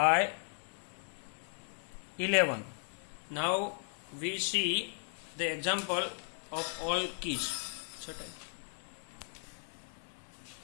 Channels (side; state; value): right; silent; 53 dB below the other